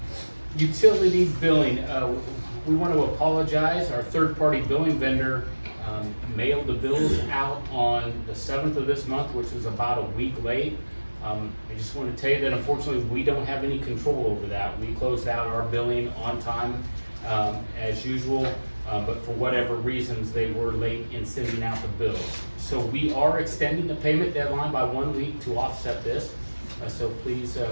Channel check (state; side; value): inverted; both; correlation -1.00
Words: Utility billing. We want to apologize. Our third-party billing vendor mailed the bills out on the 7th of this month, which was about a week late. I just want to tell you that unfortunately we don't have any control over that. We closed out our billing on time as usual, but for whatever reasons they were late in sending out the bills. So we are extending the payment deadline by 1 week to offset this. So please